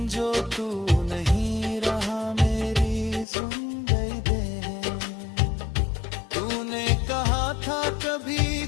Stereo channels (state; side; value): drops out; right; at 3.2 s